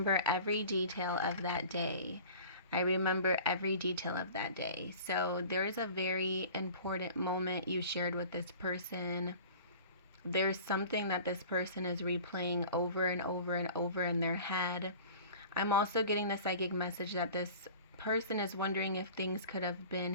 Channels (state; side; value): inverted; both; correlation -0.42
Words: every detail of that day. I remember every detail of that day. So there is a very important moment you shared with this person. There's something that this person is replaying over and over and over in their head. I'm also getting the psychic message that this person is wondering if things could have been